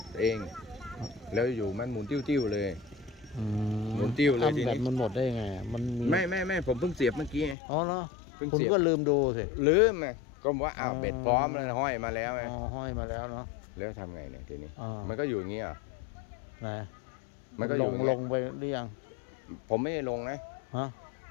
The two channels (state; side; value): drops out; right; at 7.6 s